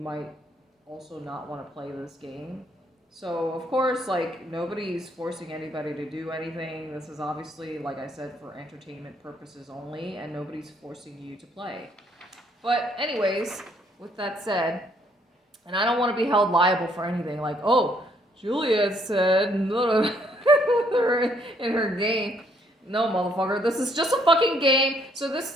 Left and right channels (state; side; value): normal; both; correlation 0.68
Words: also not want to play this game. So, of course, like, nobody's forcing anybody to do anything. This is obviously, like I said, for entertainment purposes only, and nobody's forcing you to play. But, anyways, with that said, and I don't want to be held liable for anything, like, oh, Juliet said in her game. No, motherfucker, this is just a fucking game. So